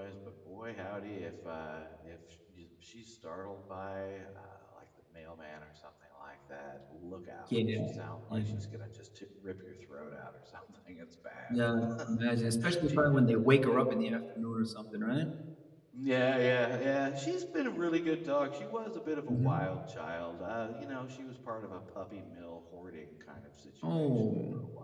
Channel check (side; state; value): both; identical; correlation 1.00